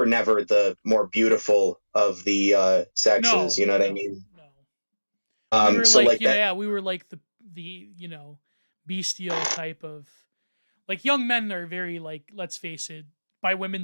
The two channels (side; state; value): both; inverted; correlation -1.00